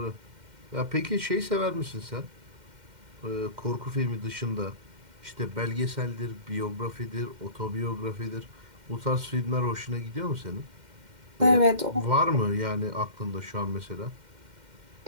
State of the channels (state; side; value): late; left; 2.1 ms